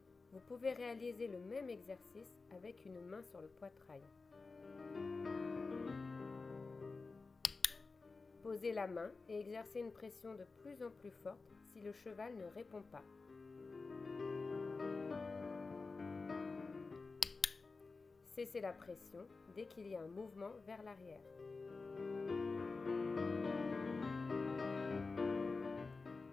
Vous pouvez réaliser le même exercice avec une main sur le poitrail. Posez la main et exercez une pression de plus en plus forte si le cheval ne répond pas. Cessez la pression dès qu'il y a un mouvement vers l'arrière.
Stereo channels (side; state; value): right; quieter; 4.0 dB